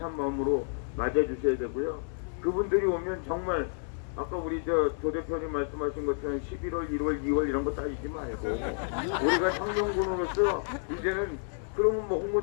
마음으로 맞아주셔야 되고요. 그분들이 오면 정말 아까 우리 조 대표님 말씀하신 것처럼 11월, 1월, 2월 이런 거 따지지 말고 우리가 혁명군으로서 이제는 그러면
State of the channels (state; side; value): silent; right; 58 dB below the other